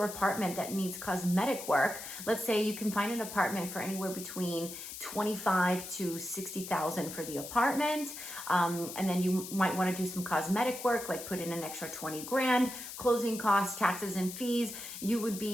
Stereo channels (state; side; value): noise; left; hiss, 10 dB below the sound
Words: apartment that needs cosmetic work. Let's say you can find an apartment for anywhere between between 25 to 60,000 for the apartment. And then you might want to do some cosmetic work, like put in an extra 20 grand, closing costs, taxes and fees. You would